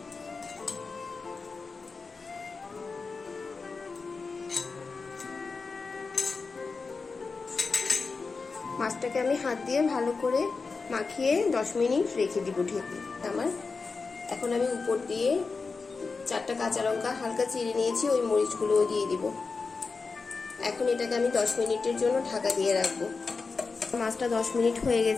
মাছটাকে আমি হাত দিয়ে ভালো করে মাখিয়ে 10 মিনিট রেখে দিব ঢেকে। এখন আমি উপর দিয়ে 4টা কাঁচা লঙ্কা হালকা চিড়ে নিয়েছি, ওই মরিচগুলোও দিয়ে দিব। এখন এটাকে আমি 10 মিনিটের জন্য ঢাকা দিয়ে রাখবো। মাছটা 10 মিনিট হয়ে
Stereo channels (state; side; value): quieter; right; 4.4 dB